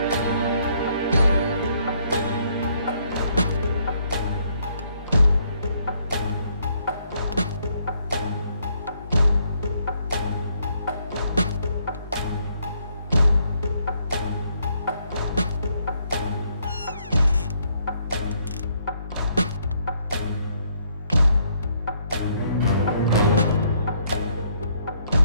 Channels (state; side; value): inverted; both; correlation -0.70